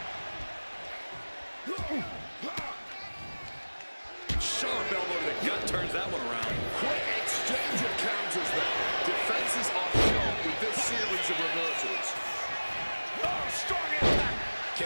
Sharp elbow to the gut turns that one around. Quick exchange of counters there. Defenses are sharp with this series of reversals. Oh, strong impact.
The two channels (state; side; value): inverted; both; correlation -1.00